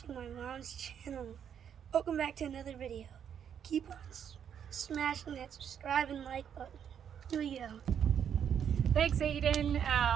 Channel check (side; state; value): left; quieter; 8.5 dB